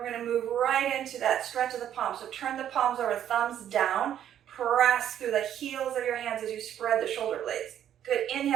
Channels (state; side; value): quieter; left; 10.4 dB